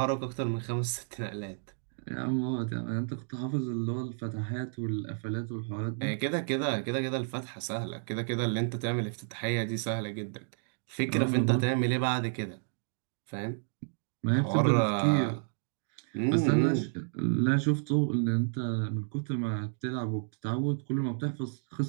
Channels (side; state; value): left; silent; digital silence